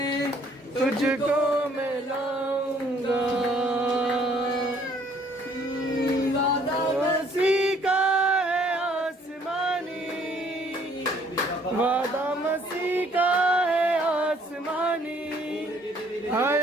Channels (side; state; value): both; normal; correlation 0.61